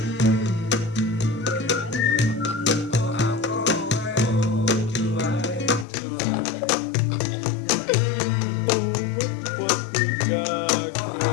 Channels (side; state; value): right; drops out; at 5.9 s